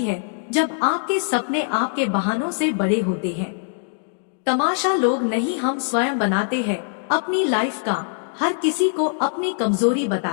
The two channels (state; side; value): silent; right; digital silence